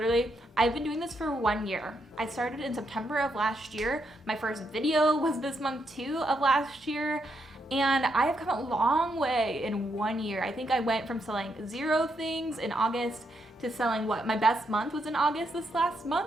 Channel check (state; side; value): normal; both; correlation 0.79